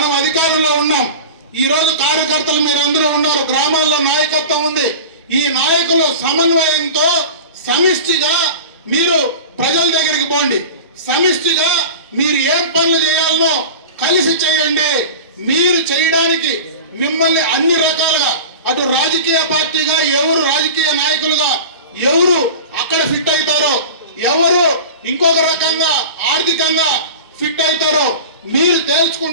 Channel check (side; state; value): both; inverted; correlation -0.34